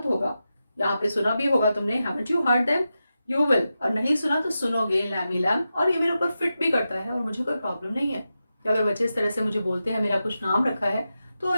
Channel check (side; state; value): both; inverted; correlation -0.90